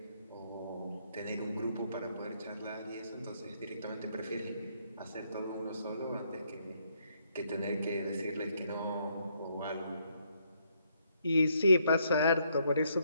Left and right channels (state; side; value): inverted; both; correlation -0.73